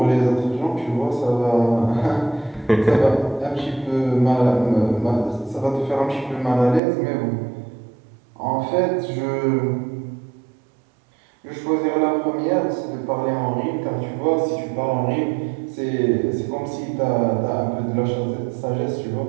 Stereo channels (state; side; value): drops out; left; at 6.8 s